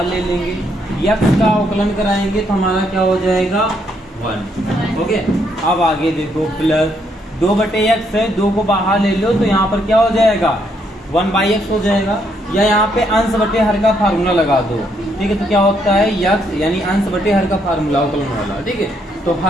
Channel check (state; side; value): normal; both; correlation 0.73